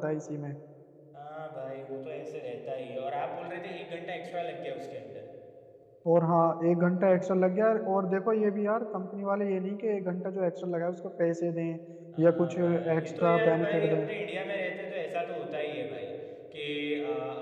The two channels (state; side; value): identical; both; correlation 1.00